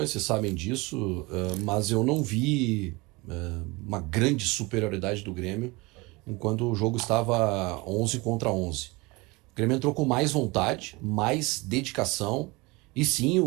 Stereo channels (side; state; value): left; quieter; 24.5 dB